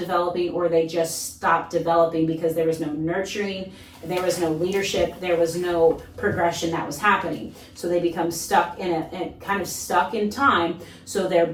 or they just stopped developing because there was no nurturing, there was no leadership, there was no progression that was happening. So they become stuck kind of stuck in time. So their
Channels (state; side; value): identical; both; correlation 1.00